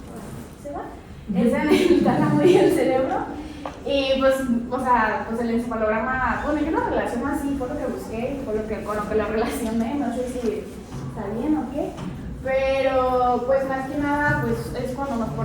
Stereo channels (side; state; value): both; identical; correlation 1.00